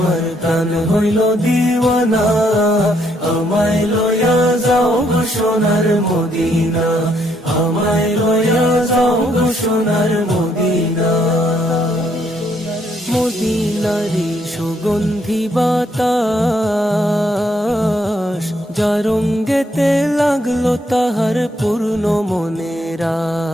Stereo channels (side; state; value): both; normal; correlation 0.72